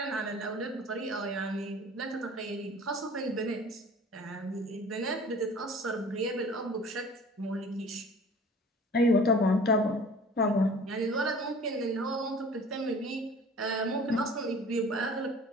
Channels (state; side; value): normal; both; correlation 0.45